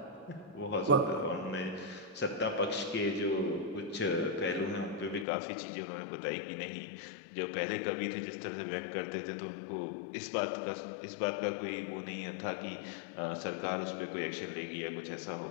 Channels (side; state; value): right; drops out; at 5.2 s